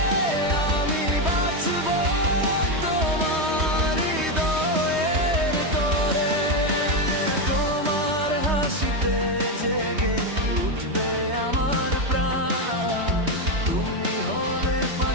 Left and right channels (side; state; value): left; late; 3.2 ms